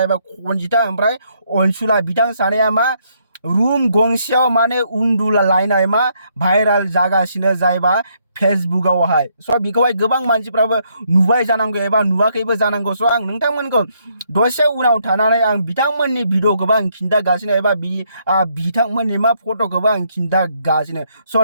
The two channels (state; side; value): inverted; both; correlation -0.73